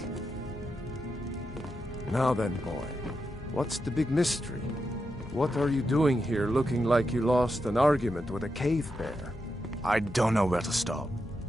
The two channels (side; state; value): both; normal; correlation 0.86